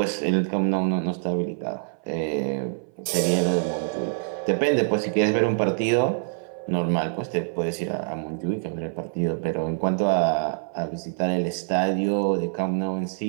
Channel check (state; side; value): silent; left; 56 dB below the other